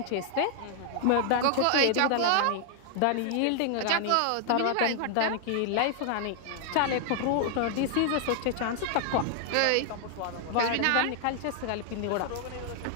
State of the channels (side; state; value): both; different; correlation 0.00